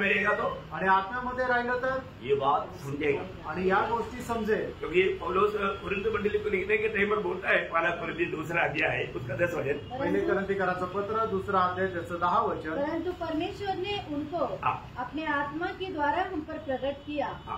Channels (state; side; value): identical; both; correlation 1.00